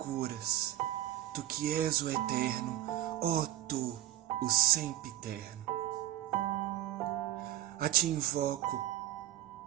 tu que és o eterno, ó tu, o sempiterno. A ti invoco,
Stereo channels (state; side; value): quieter; left; 13.8 dB